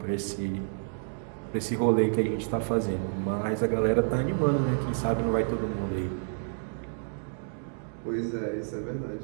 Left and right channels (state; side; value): silent; left; digital silence